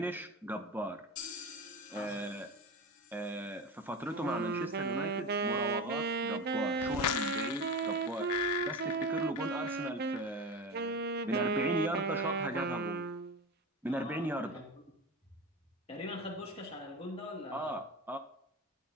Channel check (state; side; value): normal; both; correlation 0.27